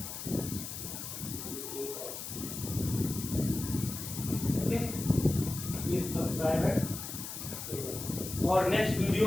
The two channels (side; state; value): left; noise; hiss, 8 dB below the sound